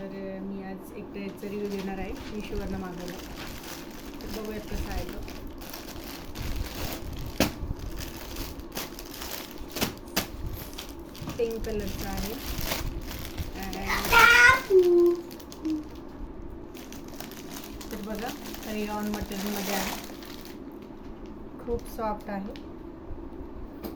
मी आज एक ड्रेसचा रिव्ह्यू देणार आहे. मिशोवरनं मागवला. तर बघूयात कसा आहे तो. पिंक कलरचा आहे. तर बघा रेयॉन मटेरियलमध्ये आहे. खूप सॉफ्ट आहे.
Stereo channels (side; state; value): both; identical; correlation 1.00